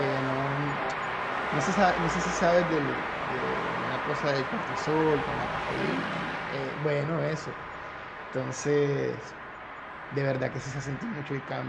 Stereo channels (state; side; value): identical; both; correlation 1.00